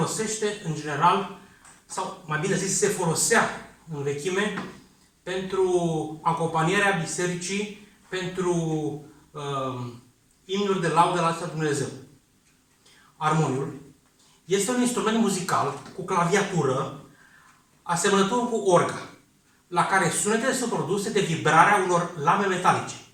în general, sau mai bine zis, se folosea în vechime pentru acompanierea bisericii, pentru imnuri de laudă la Dumnezeu. Armoniul este un instrument muzical cu claviatură asemănător cu orga, la care sunetele sunt produse de vibrarea unor lame metalice,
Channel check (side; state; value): both; identical; correlation 1.00